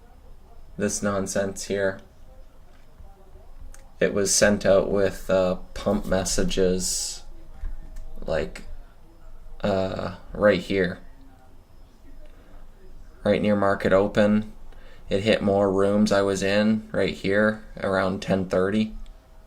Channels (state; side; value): identical; both; correlation 1.00